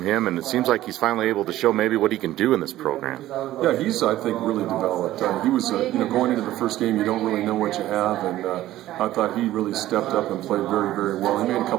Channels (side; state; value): left; quieter; 14.5 dB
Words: him? And it seems like he's finally able to show maybe what he can do in this program. Yeah, he's, I think, really developed. He was, going into the first game, you don't really know what you have, and I thought he really stepped up and played very, very well. He made a